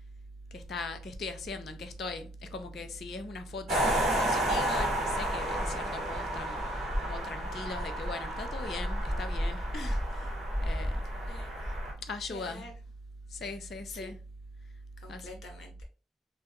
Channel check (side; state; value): both; normal; correlation 0.66